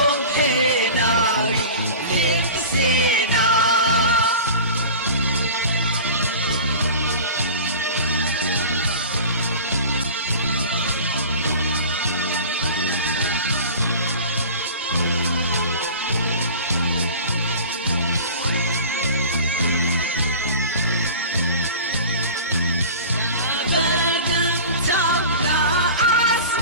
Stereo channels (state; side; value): inverted; both; correlation -0.37